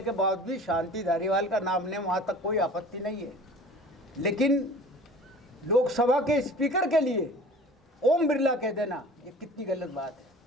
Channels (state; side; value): normal; both; correlation 0.43